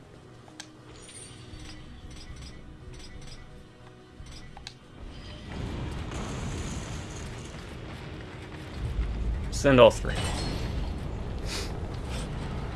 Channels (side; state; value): both; identical; correlation 1.00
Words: Send all three.